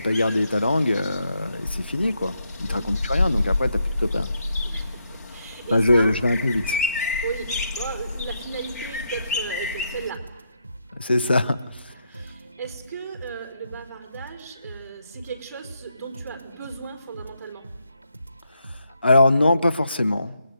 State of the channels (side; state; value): both; inverted; correlation -0.79